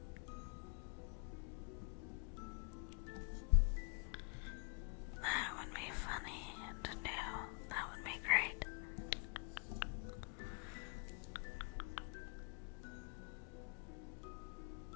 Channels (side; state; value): right; quieter; 36.7 dB